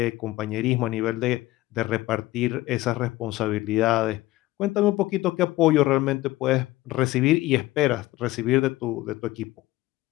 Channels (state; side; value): quieter; right; 17.6 dB